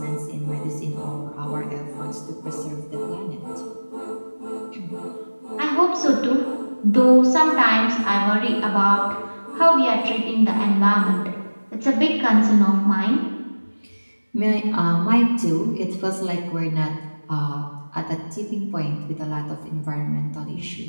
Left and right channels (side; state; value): both; inverted; correlation -1.00